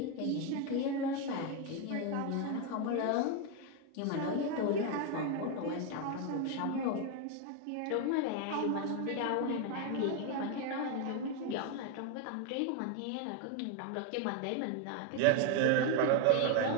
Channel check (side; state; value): both; different; correlation 0.01